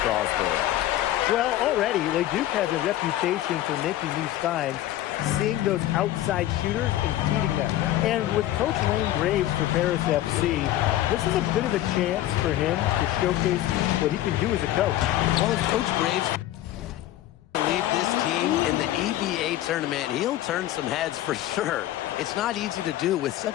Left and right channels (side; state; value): right; quieter; 14.0 dB